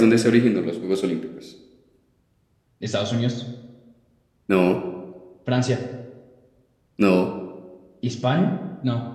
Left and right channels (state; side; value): identical; both; correlation 1.00